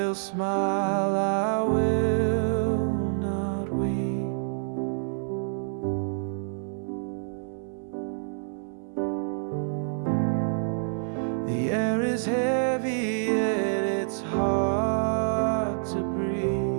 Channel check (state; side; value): silent; left; digital silence